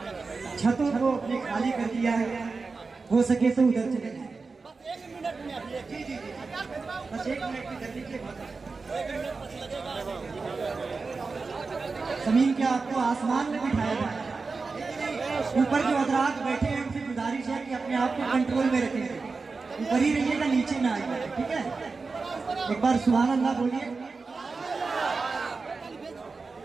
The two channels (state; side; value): quieter; left; 4.3 dB